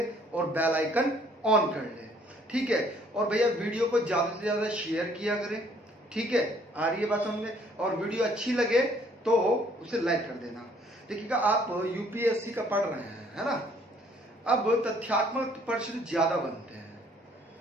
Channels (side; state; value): both; normal; correlation 0.61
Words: और बेल आइकन ऑन कर ले, ठीक है। और भैया वीडियो को ज्यादा से ज्यादा शेयर किया करें, ठीक है। आ रही है बात समझ में। और वीडियो अच्छी लगे तो उसे लाइक कर देना। देखिएगा आप यूपीएससी का पढ़ रहे हैं, है ना। अब तथ्यात्मक प्रश्न ज्यादा बनते हैं।